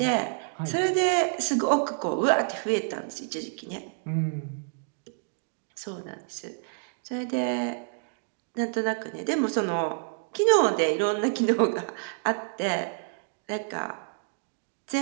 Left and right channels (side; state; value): left; silent; digital silence